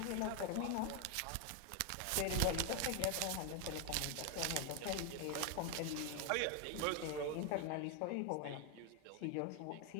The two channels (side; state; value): both; different; correlation 0.01